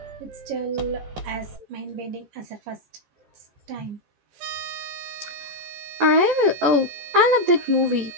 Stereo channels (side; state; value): left; late; 14 ms